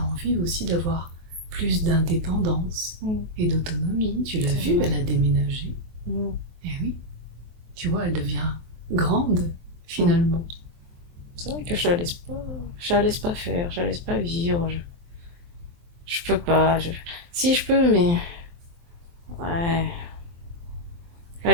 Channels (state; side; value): late; left; 23 ms